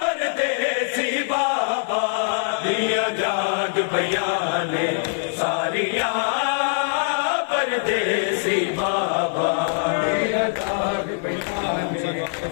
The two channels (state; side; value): silent; right; digital silence